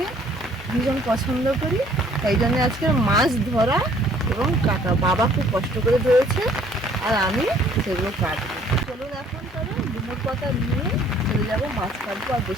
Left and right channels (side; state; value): both; normal; correlation 0.59